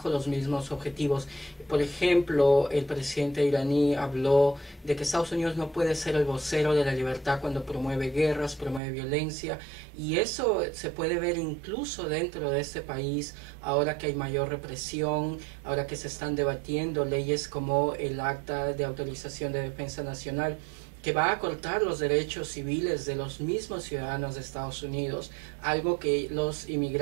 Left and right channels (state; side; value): drops out; left; at 8.8 s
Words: los mismos objetivos. Por ejemplo, el presidente iraní habló de que Estados Unidos no puede ser el vocero de la libertad cuando promueve guerras, promueve violencia, y eso se puede ver incluso dentro de este país, ahora que hay mayor represión, ahora que se están debatiendo leyes como el Acta de Autorización de Defensa Nacional, que va a cortar los derechos civiles de los mismos ciudadanos de Estados Unidos, algo que los